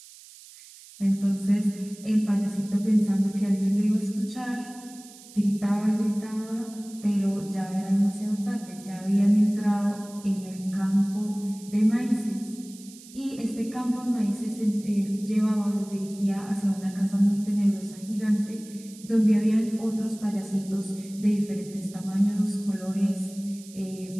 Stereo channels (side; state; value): right; noise; hiss, 20 dB below the sound